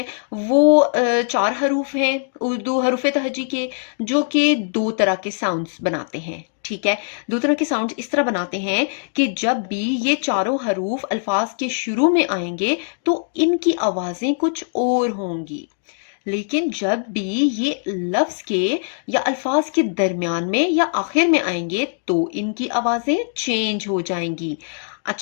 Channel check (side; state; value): right; silent; digital silence